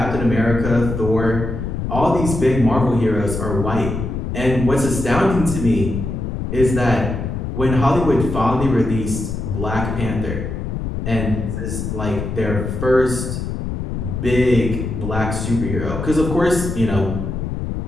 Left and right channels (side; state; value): left; noise; rumble, 4 dB below the sound